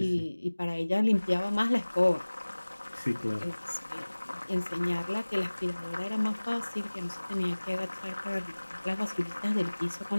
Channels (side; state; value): both; inverted; correlation -1.00